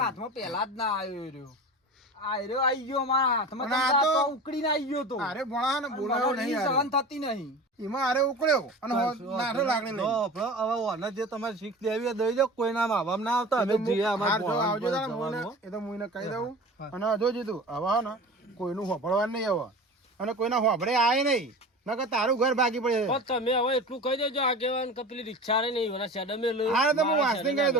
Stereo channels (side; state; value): both; normal; correlation 0.34